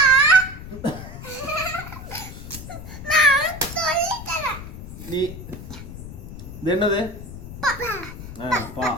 நான் சொல்லி தரேன். நீ இது என்னது? பா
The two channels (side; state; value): left; noise; rumble, 11 dB below the sound